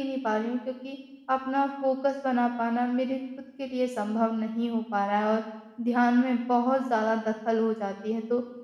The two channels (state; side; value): identical; both; correlation 1.00